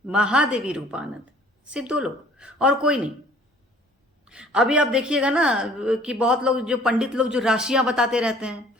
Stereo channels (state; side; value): normal; both; correlation 0.54